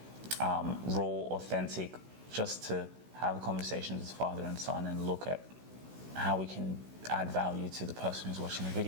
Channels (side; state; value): left; late; 16 ms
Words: Raw, authentic, just to have conversations as father and son and look at how we can add value to the person who's watching the